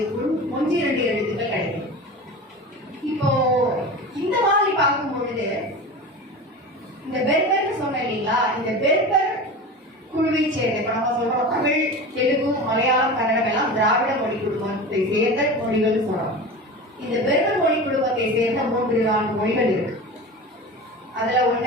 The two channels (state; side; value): normal; both; correlation 0.31